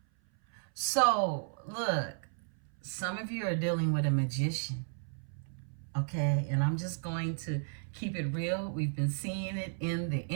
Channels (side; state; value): left; silent; 55 dB below the other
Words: So, look, some of you are dealing with a magician, okay? And I'm just going to keep it real. We've been seeing it in the